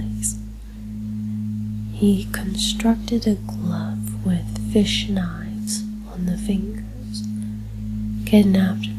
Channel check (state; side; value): identical; both; correlation 1.00